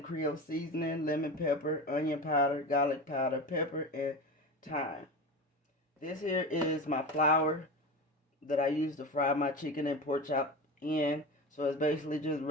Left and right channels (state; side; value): normal; both; correlation 0.27